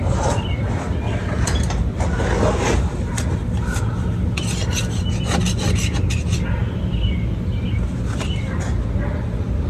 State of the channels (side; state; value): both; identical; correlation 1.00